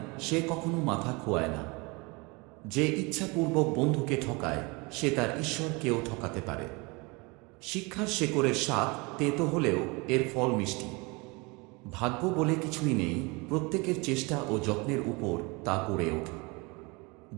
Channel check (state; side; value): quieter; left; 27.2 dB